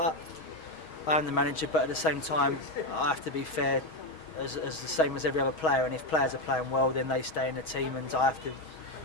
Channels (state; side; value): late; right; 6.2 ms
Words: I am the manager, but at the same time, I have to be fair, as the same as every other player. And if players are playing well, then they stay in the team, and I have to